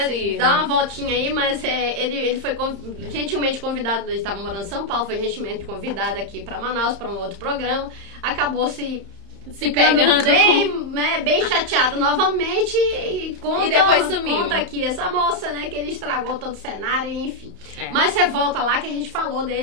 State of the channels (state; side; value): late; left; 30 ms